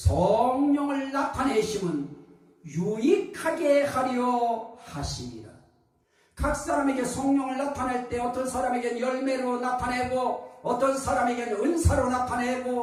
나타내심은 유익하게 하려 하시니라. 각 사람에게 성령을 나타낼 때 어떤 사람에게는 열매로 나타내고 어떤 사람에게는 은사로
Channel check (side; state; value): both; identical; correlation 1.00